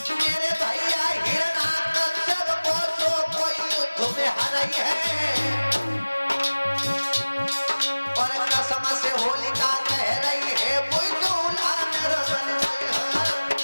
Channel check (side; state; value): both; inverted; correlation -1.00